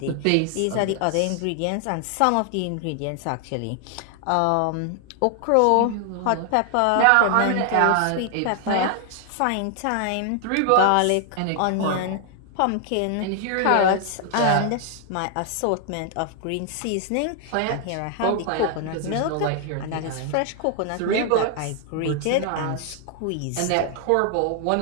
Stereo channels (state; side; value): different; both; correlation 0.00